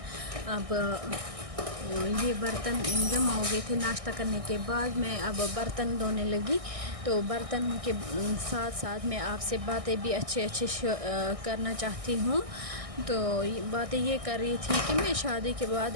अब ये बर्तन जमा हो गए थे नाश्ता करने के बाद, मैं अब बर्तन धोने लगी। तो बर्तन के साथ साथ मैं आपसे बातें भी अच्छे करना चाहती हूँ। तो बातें ये कर रही थी कि मैं शादी के बाद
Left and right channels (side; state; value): left; late; 1.6 ms